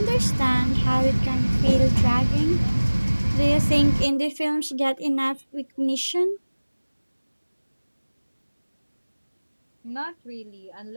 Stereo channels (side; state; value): both; inverted; correlation -1.00